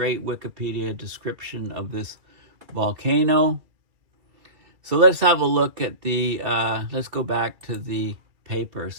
Wikipedia description of this volcano. So let's have a look at let's go back to the paper.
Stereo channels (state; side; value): late; left; 2.7 ms